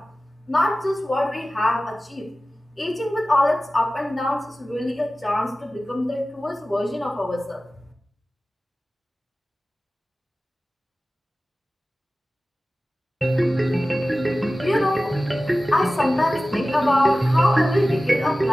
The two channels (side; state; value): both; normal; correlation 0.96